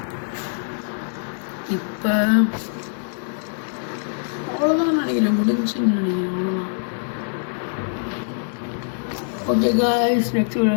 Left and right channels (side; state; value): right; silent; digital silence